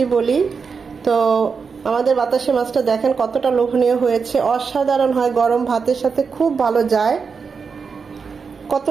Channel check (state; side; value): quieter; left; 5.5 dB